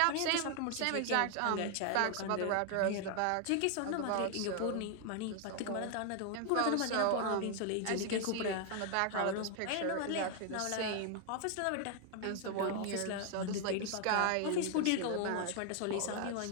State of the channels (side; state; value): both; different; correlation 0.00